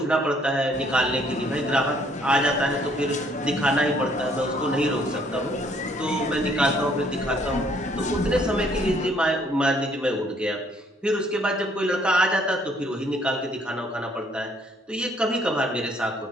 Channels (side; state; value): both; normal; correlation 0.64